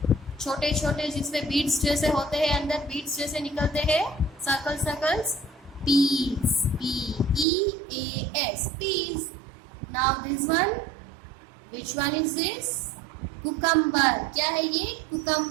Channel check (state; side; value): drops out; left; at 7.5 s